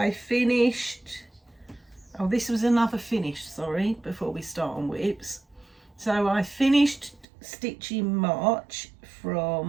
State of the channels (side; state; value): left; drops out; at 7.2 s